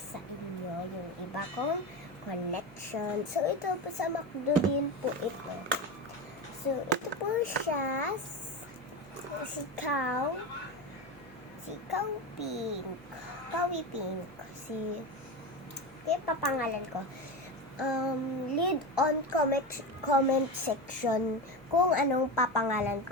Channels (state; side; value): normal; both; correlation 0.21